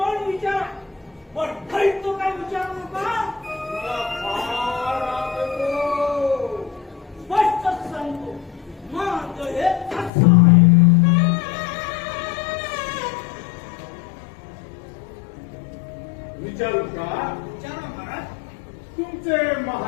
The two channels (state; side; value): drops out; right; at 10.1 s